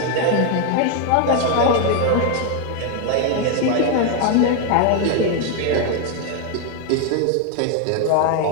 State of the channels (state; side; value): different; both; correlation 0.01